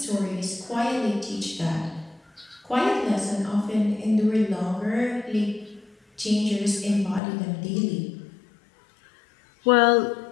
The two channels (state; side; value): drops out; right; at 7.2 s